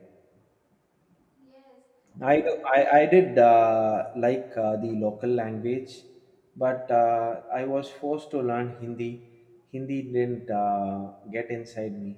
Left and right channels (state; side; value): identical; both; correlation 1.00